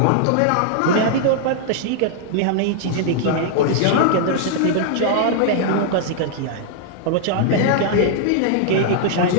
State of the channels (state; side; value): different; both; correlation -0.01